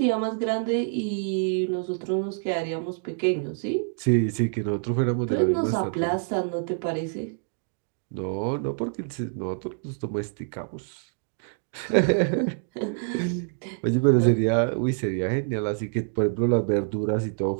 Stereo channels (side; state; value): left; silent; digital silence